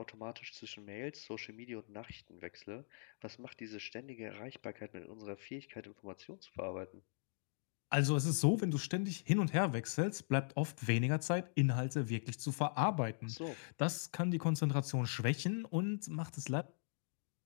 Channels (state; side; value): silent; right; digital silence